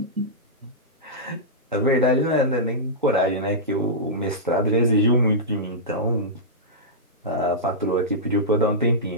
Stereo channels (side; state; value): both; normal; correlation -0.13